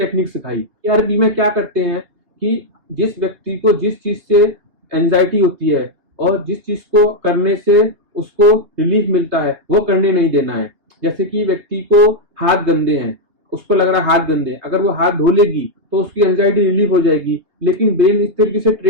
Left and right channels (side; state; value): left; late; 3.3 ms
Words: सिखाई। ईआरपी में क्या करते हैं कि जिस व्यक्ति को जिस चीज से एंजाइटी होती है और जिस चीज को करने से उसको रिलीफ मिलता है, वो करने नहीं देना है। जैसे कि व्यक्ति को हाथ गंदे हैं, उसको लग रहा है हाथ गंदे, अगर वो हाथ धो लेगी तो उसकी एंजाइटी रिलीफ हो जाएगी, लेकिन ब्रेन इस तरीके से